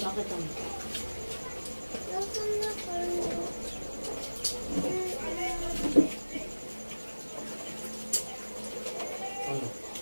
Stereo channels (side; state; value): both; inverted; correlation -1.00